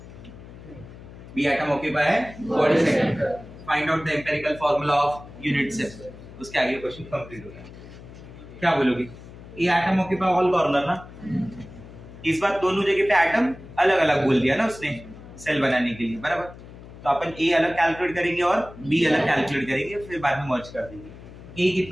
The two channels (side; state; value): left; noise; hum, 17 dB below the sound